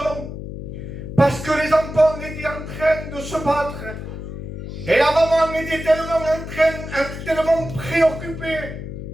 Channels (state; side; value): noise; left; hum, 9 dB below the sound